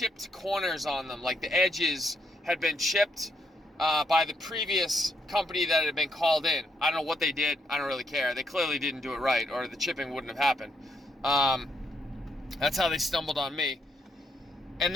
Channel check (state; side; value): normal; both; correlation 0.77